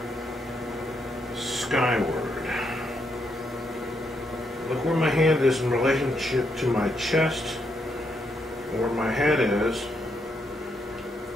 skyward. Look where my hand is in relationship to my chest, and where my head is.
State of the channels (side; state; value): both; normal; correlation 0.78